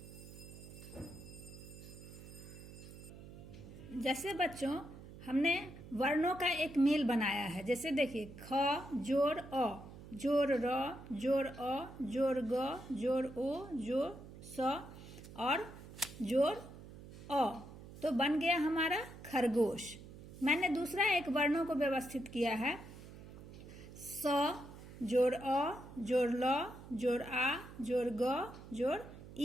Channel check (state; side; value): noise; right; hum, 15 dB below the sound